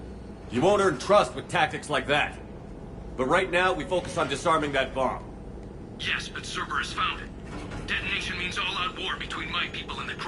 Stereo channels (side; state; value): both; identical; correlation 1.00